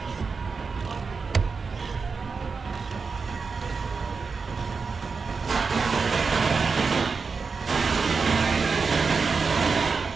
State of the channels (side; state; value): left; quieter; 4.9 dB